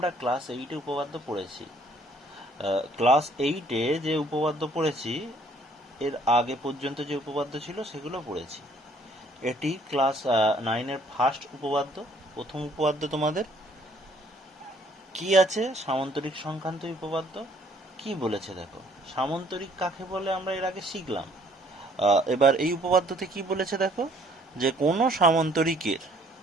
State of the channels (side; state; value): both; normal; correlation 0.61